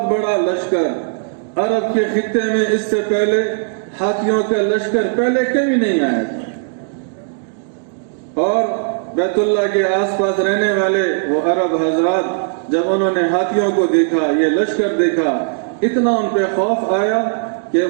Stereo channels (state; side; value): silent; left; digital silence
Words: بڑا لشکر۔ عرب کے خطے میں اس سے پہلے ہاتھیوں کا لشکر پہلے کبھی نہیں آیا تھا، اور بیت اللہ کے آس پاس رہنے والے وہ عرب حضرات جب انہوں نے ہاتھیوں کو دیکھا، یہ لشکر دیکھا، اتنا ان پہ خوف آیا کہ